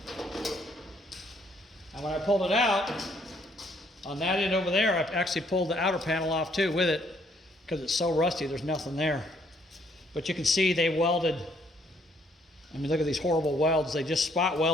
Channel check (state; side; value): normal; both; correlation 0.67